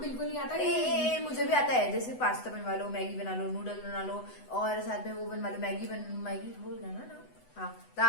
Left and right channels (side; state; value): right; late; 8.0 ms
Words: नहीं आता। ए, मुझे भी आता है। जैसे पास्ता बनवा लो, मैगी बना लो, नूडल बना लो, और साथ में वो बनवा लो मैगी हो गया ना। हाँ,